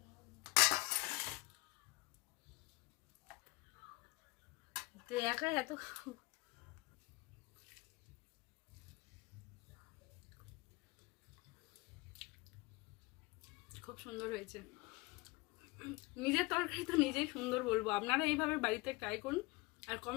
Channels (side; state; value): right; quieter; 23.5 dB